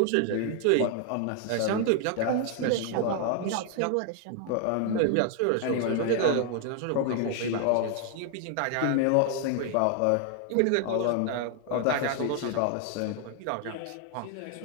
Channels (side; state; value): both; different; correlation 0.00